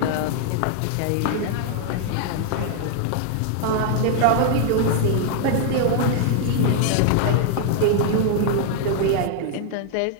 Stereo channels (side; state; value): both; different; correlation -0.01